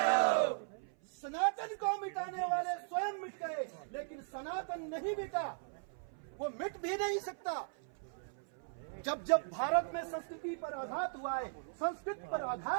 सनातन को मिटाने वाले स्वयं मिट गए, लेकिन सनातन नहीं मिटा, वो मिट भी नहीं सकता। जब जब भारत में संस्कृति पर आघात हुआ है, संस्कृत पर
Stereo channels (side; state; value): left; silent; 52 dB below the other